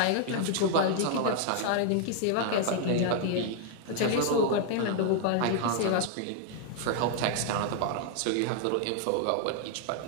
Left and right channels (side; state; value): both; different; correlation 0.00